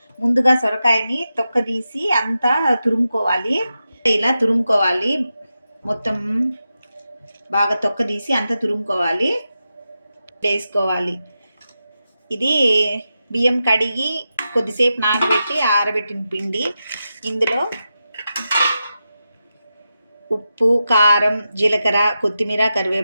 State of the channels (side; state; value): both; inverted; correlation -0.90